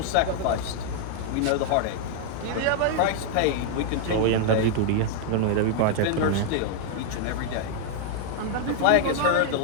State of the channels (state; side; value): different; both; correlation 0.00